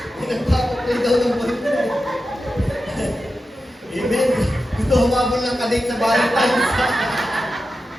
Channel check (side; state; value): both; normal; correlation 0.91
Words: Nagpapapray daw ng boyfriend. Amen. Gusto humabol ng kadate sa Valentine's.